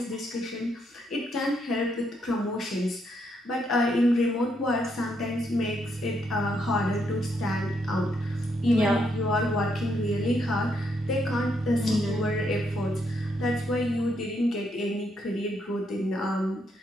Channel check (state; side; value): normal; both; correlation 0.76